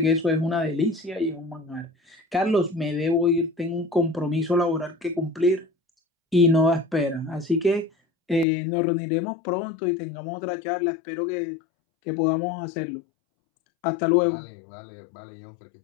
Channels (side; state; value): right; drops out; at 8.5 s